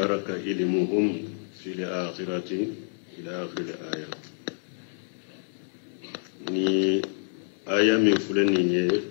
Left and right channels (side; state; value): right; silent; 59 dB below the other